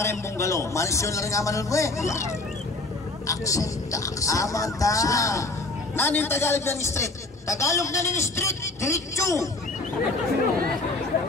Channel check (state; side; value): quieter; right; 3.1 dB